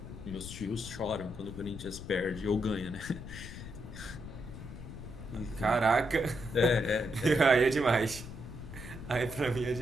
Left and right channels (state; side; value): noise; left; rumble, 11 dB below the sound